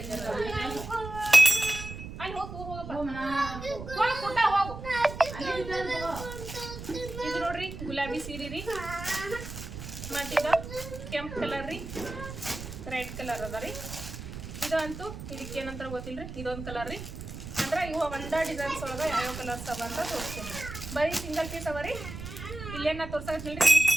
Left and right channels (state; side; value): noise; right; rumble, 10 dB below the sound